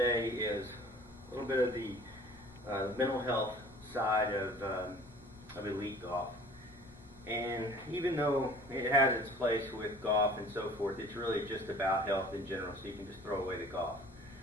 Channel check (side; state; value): both; normal; correlation 0.48